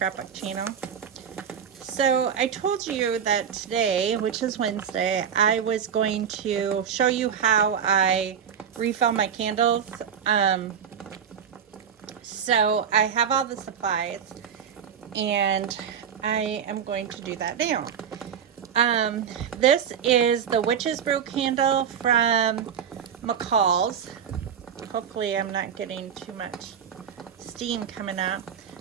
channel. So I told you that today, which is Wednesday, I was going to show you how I refill my candles. So I have all the supplies and I am going to do that now. This is the Witch's Brew candle from McCall's. Hopefully I'm not getting too much steam coming up,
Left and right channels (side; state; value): left; quieter; 8.0 dB